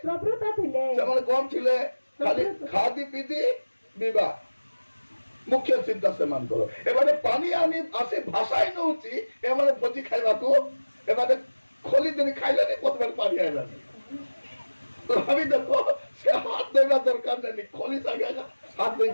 ପ୍ରବୃତ୍ତ ଥିଲେ ସେମାନେ କଣ ଥିଲେ ଖାଲି ଖାଦି ପିଦି ବିବାହ ମୁଖ୍ୟ ଚିନ୍ତା ସେମାନଙ୍କର ଏମାନେ ପାଣି ଆଣି ଆସି ଭାଷାଇ ନଉଛି ଏମାନେ ଭୋଜି ଖାଇବାକୁ ଏମାନେ ଖୋଲି ଦିନ ଖାଇଲେନି ପ୍ରଥମେ ପାଣି ଆଇଲାନି ଭାବି ଦେଖ ସେ ହାତ ଧୋଇବା ଦରକାର ନାହିଁ ଖୋଲି ସାଙ୍ଗେ ହାତ ଧୋଇ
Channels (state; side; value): inverted; both; correlation -1.00